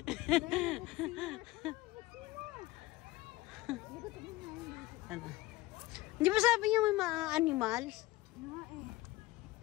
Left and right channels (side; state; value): right; quieter; 18.7 dB